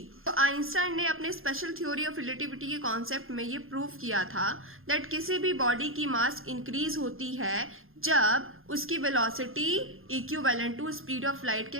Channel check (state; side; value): late; left; 0.60 ms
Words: तो आइंस्टाइन ने अपने स्पेशल थ्योरी ऑफ रिलेटिविटी के कॉन्सेप्ट में ये प्रूव किया था दैट किसी भी बॉडी की मास इंक्रीज होती है जब उसकी velocity equivalent to speed of light